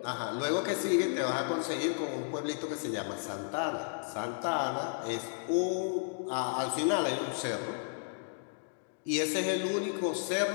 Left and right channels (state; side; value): silent; right; digital silence